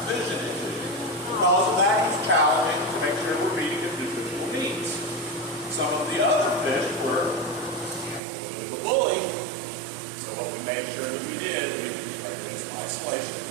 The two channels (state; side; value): drops out; left; at 8.2 s